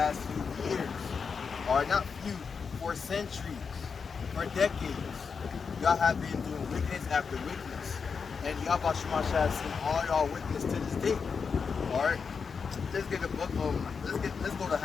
few years. Alright, not few, for centuries, for decades. Y'all have been doing wickedness after wickedness, and YAHAWASHI has seen all y'all wickedness to this day. Alright, let's get the book. Let's go to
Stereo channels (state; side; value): quieter; right; 5.6 dB